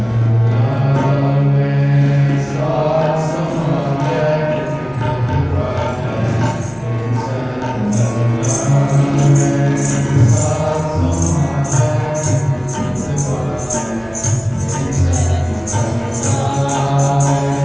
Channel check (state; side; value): noise; right; hum, 25 dB below the sound